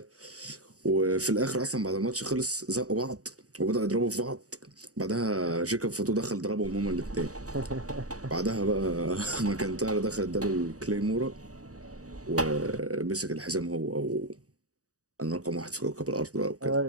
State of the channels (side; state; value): left; late; 0.66 ms